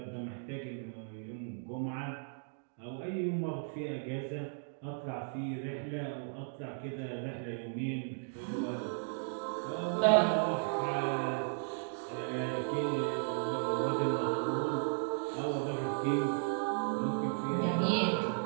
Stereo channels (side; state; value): left; silent; digital silence